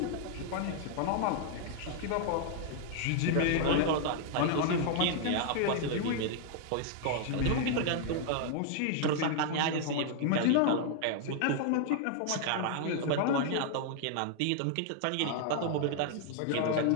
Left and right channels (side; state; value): both; different; correlation 0.00